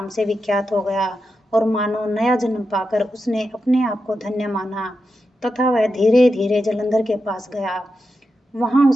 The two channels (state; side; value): normal; both; correlation 0.88